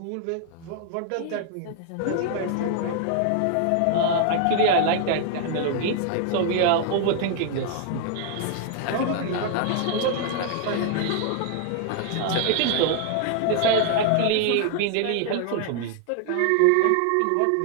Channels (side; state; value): both; different; correlation 0.00